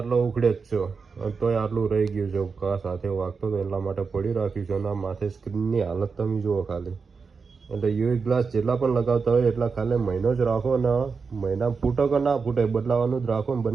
ઉખડે જ છો, તોય આટલું રહી ગયું છે। કા સાથે વાગતો તો એટલા માટે પડી રાખ્યું છે, અને માથે સ્ક્રીનની હાલત તમે જુઓ ખાલી। એટલે યુવી ગ્લાસ જેટલા પણ લગાવતા હોય એટલા ખાલી મહિનો જ રાખો, ને મહિના ફૂટો કે ના ફૂટે બદલાવાનું જ રાખો, ને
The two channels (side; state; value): left; quieter; 5.1 dB